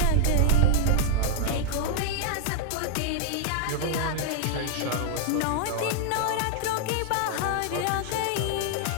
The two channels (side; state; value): both; different; correlation -0.01